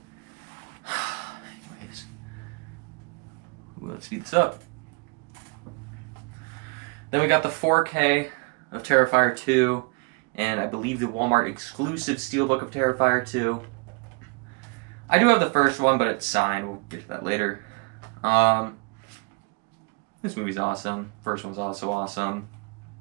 Anyways, let's speed this up. Then we got the 4K of Terrifier 2, and I believe the Walmart exclusive Steelbook of Terrifier 2. I do have the first one, but it's signed. We'll get to that later. This movie's awesome. First one's also awesome.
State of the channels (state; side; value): quieter; left; 34.6 dB